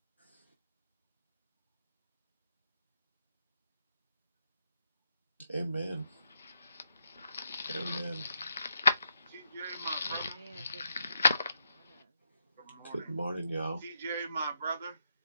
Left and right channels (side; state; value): both; inverted; correlation -0.80